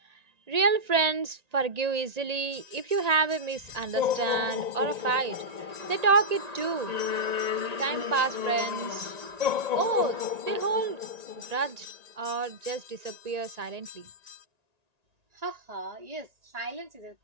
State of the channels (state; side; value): late; left; 1.9 ms